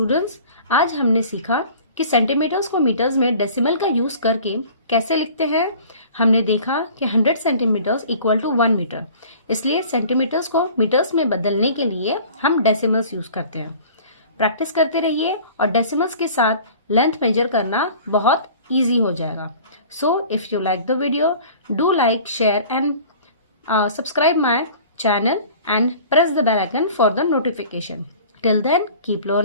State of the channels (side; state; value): both; inverted; correlation -0.46